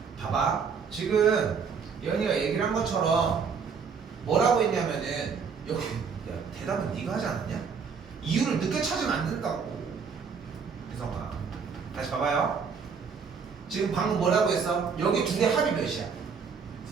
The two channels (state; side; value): quieter; left; 5.9 dB